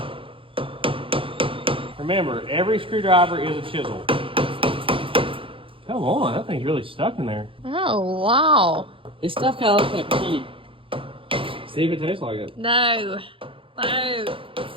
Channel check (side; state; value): left; late; 0.26 ms